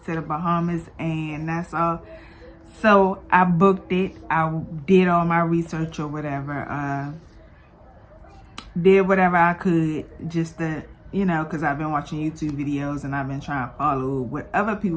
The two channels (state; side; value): identical; both; correlation 1.00